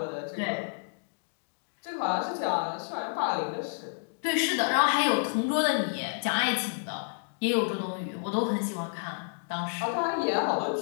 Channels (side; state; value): right; silent; digital silence